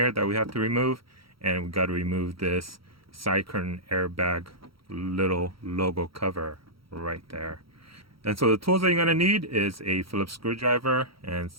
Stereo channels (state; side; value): late; left; 0.75 ms